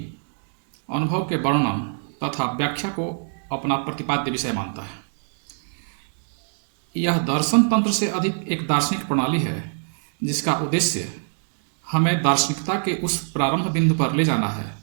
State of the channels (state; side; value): silent; left; digital silence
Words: अनुभव के वर्णन तथा व्याख्या को अपना प्रतिपाद्य विषय मानता है। यह दर्शन तंत्र से अधिक एक दार्शनिक प्रणाली है जिसका उद्देश्य हमें दार्शनिकता के उस प्रारंभ बिंदु पर ले जाना है